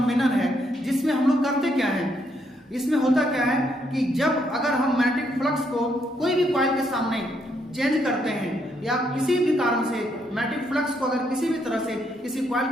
है जिसमें हम लोग करते क्या है, इसमें होता क्या है कि जब अगर हम मैग्नेटिक फ्लक्स को कोई भी कॉइल के सामने चेंज करते हैं या किसी भी कारण से मैग्नेटिक फ्लक्स को अगर किसी भी तरह से किसी कॉइल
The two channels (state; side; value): normal; both; correlation 0.74